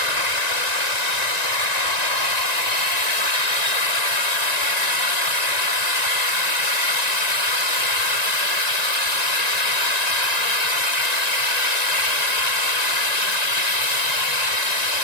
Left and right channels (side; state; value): right; late; 1.9 ms